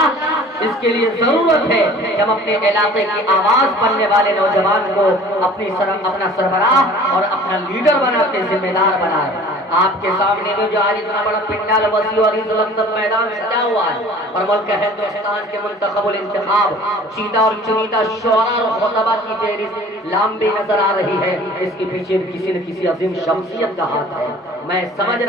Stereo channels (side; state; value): both; normal; correlation 0.47